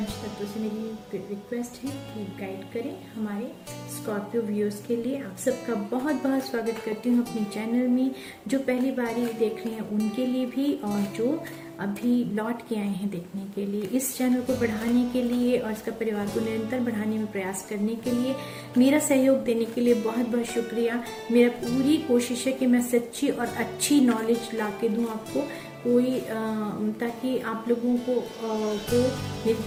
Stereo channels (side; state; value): both; identical; correlation 1.00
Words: तत्वों से मेरी रिक्वेस्ट है कि गाइड करें हमारे स्कॉर्पियो व्यूअर्स के लिए। आप सबका बहुत बहुत स्वागत करती हूँ अपनी चैनल में। जो पहली बारी देख रहे हैं उनके लिए भी, और जो अभी लौट के आए हैं देखने के लिए। इस चैनल को बढ़ाने के लिए और इसका परिवार को निरंतर बढ़ाने में प्रयास करने के लिए, मेरा सहयोग देने के लिए बहुत बहुत शुक्रिया। मेरा पूरी कोशिश है कि मैं सच्ची और अच्छी नॉलेज ला के दूँ आपको, कोई ताकि आप लोगों को मेरी